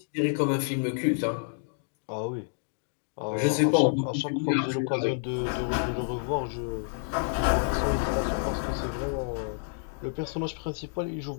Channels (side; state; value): right; silent; digital silence